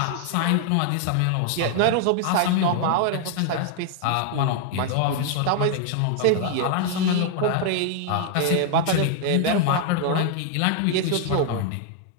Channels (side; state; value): both; different; correlation 0.00